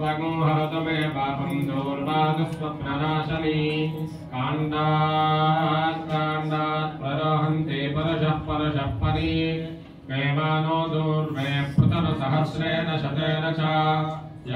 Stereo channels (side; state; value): both; identical; correlation 1.00